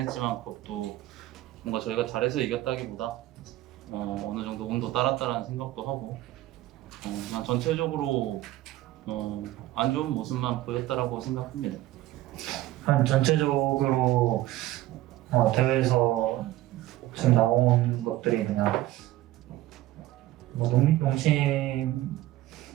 그것도 뭔가 저희가 잘해서 이겼다기보다 어느 정도 운도 따랐다라는 생각도 하고 그냥 전체적으로 안 좋은 모습만 보였다라고 생각합니다. 한 전체적으로 대회에서 지금 나온 것들이 그냥 뭐 농심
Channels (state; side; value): quieter; left; 15.8 dB